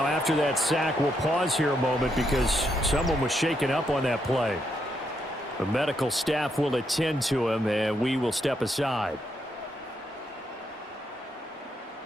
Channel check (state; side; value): normal; both; correlation 0.78